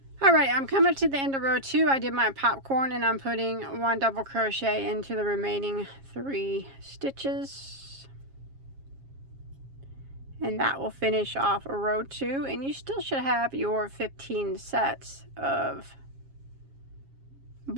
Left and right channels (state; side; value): late; left; 7.4 ms